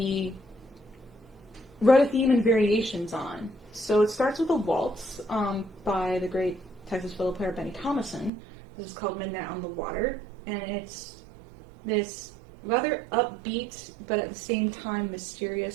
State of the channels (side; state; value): left; drops out; at 8.3 s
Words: wrote a theme and variations on. So it starts with a waltz by the great Texas fiddle player Benny Thomason. This is called Midnight on the Water, and it's this rather upbeat but at the same time